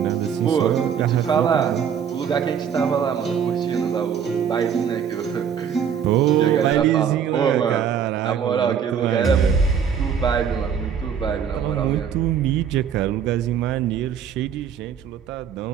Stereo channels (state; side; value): quieter; left; 7.8 dB